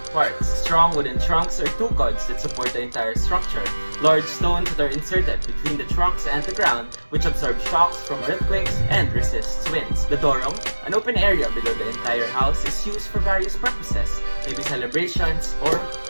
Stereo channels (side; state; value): both; inverted; correlation -1.00